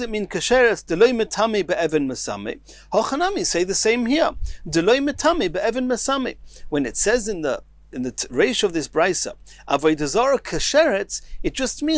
mean kasheretz? Deloi metame be'even mesame. Hochanami say the same here. Deloi metame be'even mesame. When it says in the ratio of this brisa, Avodah Zarah kasheretz, it just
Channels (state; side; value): identical; both; correlation 1.00